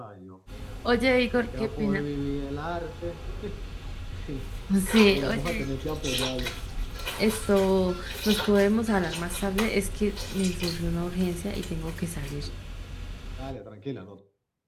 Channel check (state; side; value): identical; both; correlation 1.00